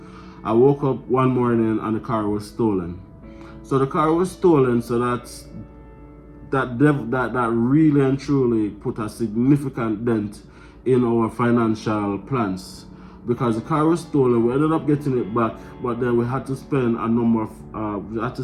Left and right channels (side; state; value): both; identical; correlation 1.00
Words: I woke up one morning and the car was stolen. So the car was stolen, so that really and truly put a significant dent in our financial plans. Because the car was stolen, we ended up getting it back, but then we had to spend